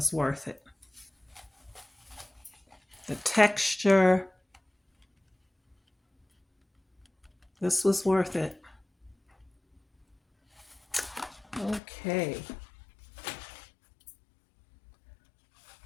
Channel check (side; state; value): right; drops out; at 11.8 s